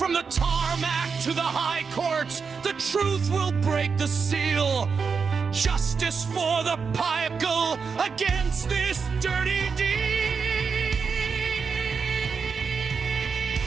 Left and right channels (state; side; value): quieter; left; 5.5 dB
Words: the tarmac to the high courts, the truth will break the seal. Justice for the pile against this dirty deed.